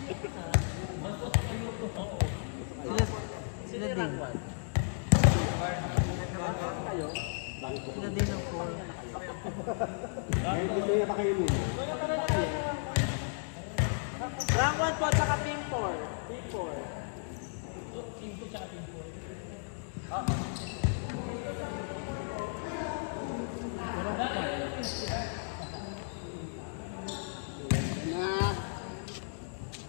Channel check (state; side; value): silent; right; digital silence